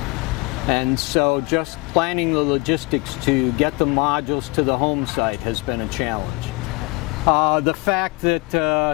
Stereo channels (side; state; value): right; quieter; 25.3 dB